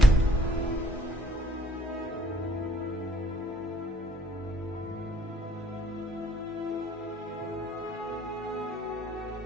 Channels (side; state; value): both; normal; correlation 0.63